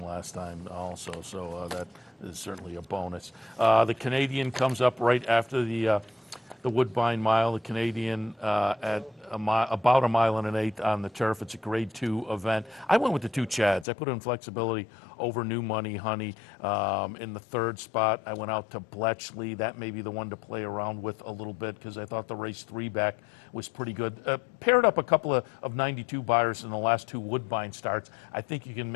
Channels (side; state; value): right; drops out; at 13.9 s